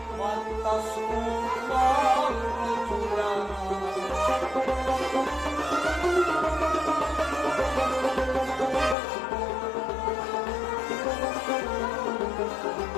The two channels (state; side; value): drops out; right; at 9.0 s